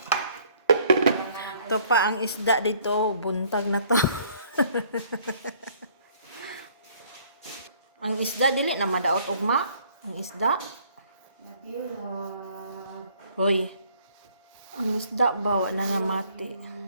Ito pa ang isda dito, buntag na to. Ang isda dili na madaot ugma. Ang isda. Hoy. Ang isda bawa na nga mati.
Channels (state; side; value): inverted; both; correlation -0.60